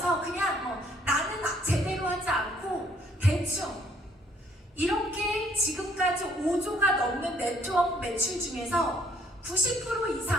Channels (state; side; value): normal; both; correlation 0.64